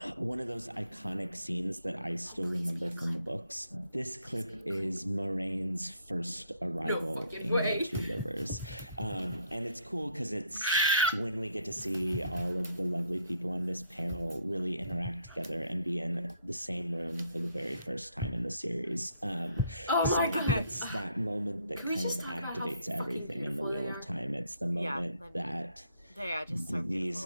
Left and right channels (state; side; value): inverted; both; correlation -0.68